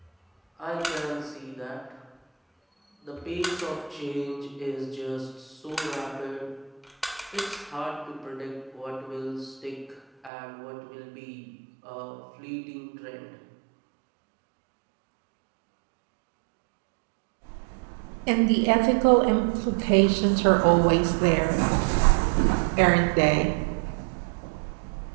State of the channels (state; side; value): drops out; left; at 10.3 s